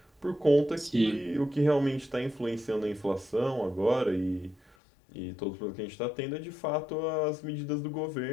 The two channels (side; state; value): right; drops out; at 4.8 s